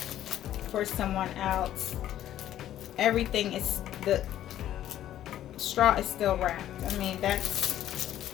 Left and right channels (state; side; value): quieter; right; 12.1 dB